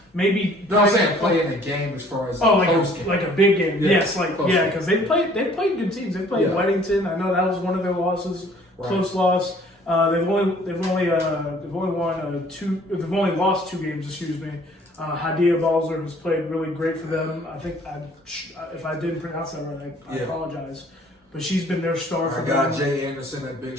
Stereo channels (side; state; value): both; normal; correlation 0.56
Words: maybe. No, I'm saying play in the game as far as like a big game. Yeah, yes, because they played good teams. They played Weddington. I know that was one of their losses, close loss. They've only lost 2 games. Excuse me. Hadia Balzer has played really great for them. I think if I didn't pronounce that right, I apologize. But she's been their star for them. Our guy Jay Anderson at Big